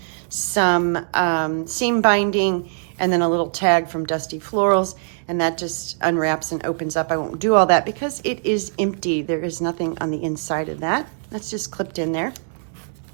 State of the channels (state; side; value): silent; left; digital silence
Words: some seam binding, and then a little tag from Dusty Florals, and that just unwraps and opens up. I won't do all that because it is empty. There is nothing on the inside of that. That's just clipped in there.